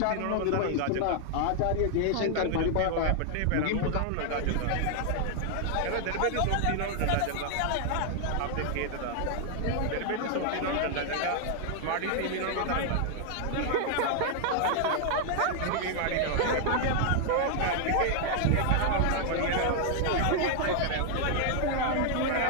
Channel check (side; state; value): both; different; correlation 0.00